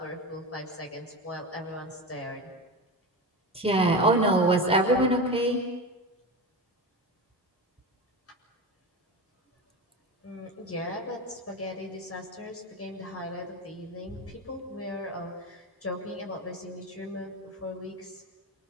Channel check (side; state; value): both; normal; correlation 0.23